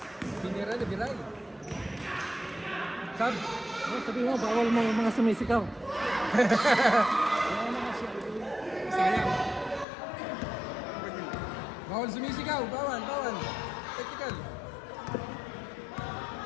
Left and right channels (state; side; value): drops out; right; at 9.9 s